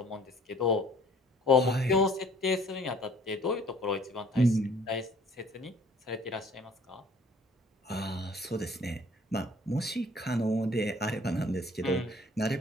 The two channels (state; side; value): normal; both; correlation 0.56